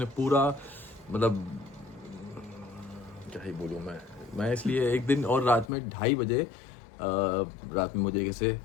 पूरा, मतलब क्या ही बोलूँ मैं इसलिए एक दिन और रात में 2:30 बजे रात में मुझे कैसे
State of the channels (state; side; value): drops out; right; at 5.7 s